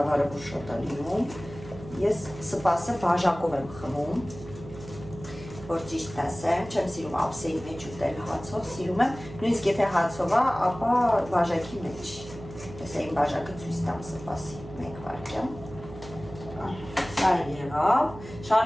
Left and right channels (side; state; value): right; noise; hum, 15 dB below the sound